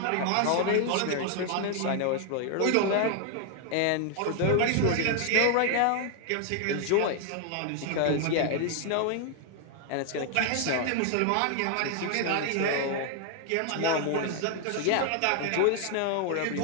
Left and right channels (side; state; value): both; different; correlation 0.00